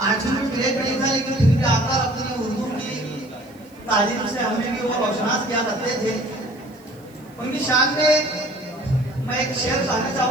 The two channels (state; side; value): noise; right; hiss, 29 dB below the sound